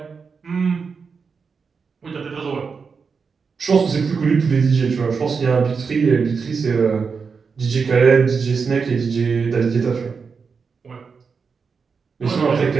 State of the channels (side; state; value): left; quieter; 5.4 dB